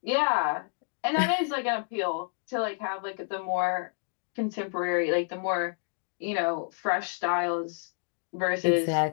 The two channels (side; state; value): right; silent; 58 dB below the other